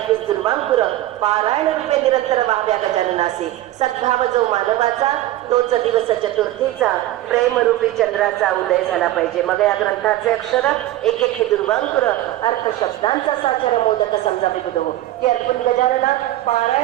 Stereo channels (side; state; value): left; quieter; 15.1 dB